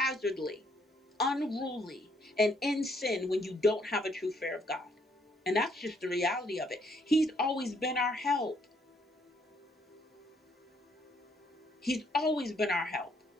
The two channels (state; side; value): normal; both; correlation 0.69